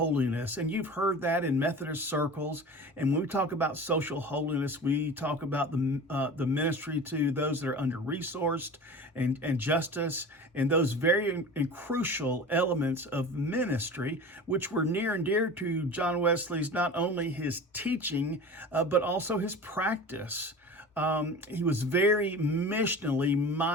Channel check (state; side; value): normal; both; correlation 0.35